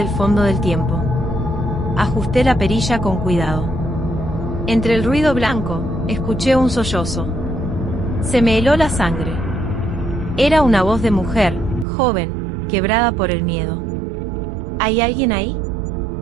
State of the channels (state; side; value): drops out; left; at 11.9 s